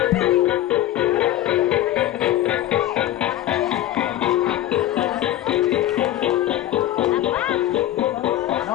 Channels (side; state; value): right; quieter; 13.6 dB